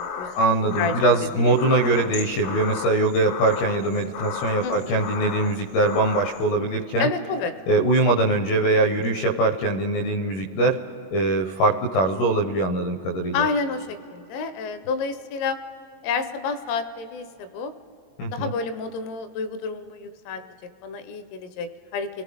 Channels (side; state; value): right; late; 21 ms